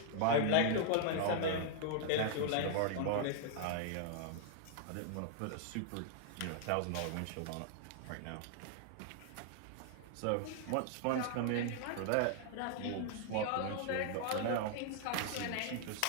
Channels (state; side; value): different; both; correlation 0.00